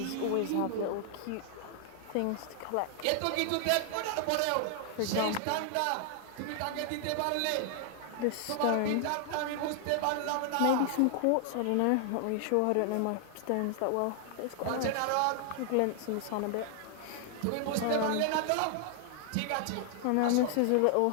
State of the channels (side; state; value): both; different; correlation 0.00